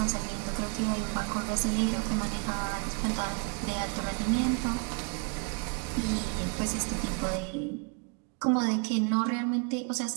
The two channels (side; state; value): left; quieter; 35.7 dB